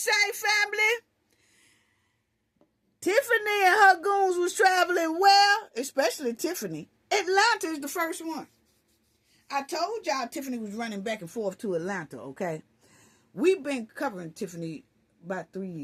family? Tiffany and her goons was traveling well, especially Tiffany. Atlanta is the first one. I told y'all Tiffany was running back and forth to Atlanta, okay? We've been covering Tiffany about 3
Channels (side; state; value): both; identical; correlation 1.00